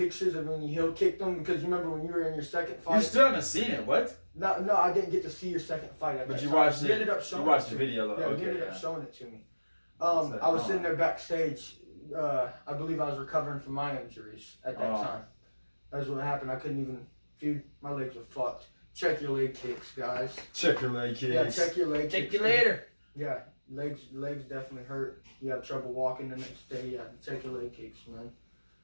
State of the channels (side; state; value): both; inverted; correlation -1.00